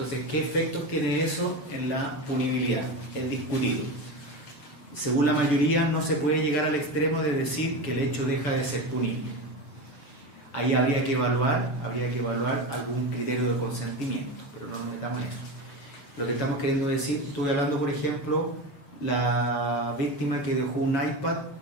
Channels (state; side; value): late; right; 7.1 ms